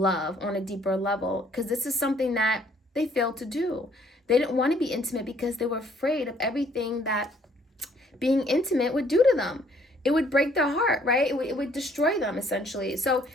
on a deeper level, because this is something that they failed to do. They didn't want to be intimate because they were afraid of everything that being intimate would do to them. It would break their heart, right? It would destroy them, essentially. So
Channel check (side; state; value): both; normal; correlation 0.63